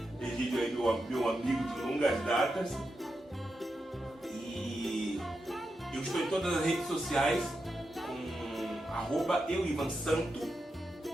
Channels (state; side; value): normal; both; correlation 0.87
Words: Egídio aí, meu amigo de longas datas. E eu estou em todas as redes sociais com @euivansanto.